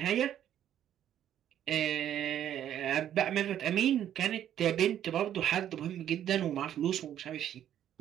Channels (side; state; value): left; quieter; 10.7 dB